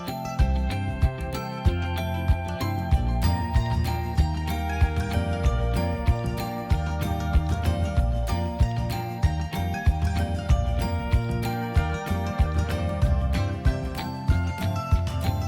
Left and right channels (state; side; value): identical; both; correlation 1.00